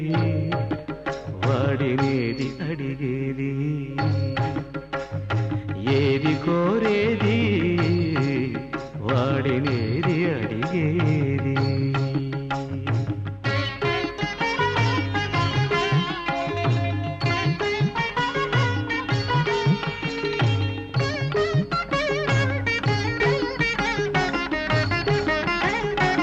వాడినేది అడిగేది ఏది కోరేది వాడినేది అడిగేది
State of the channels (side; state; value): both; identical; correlation 1.00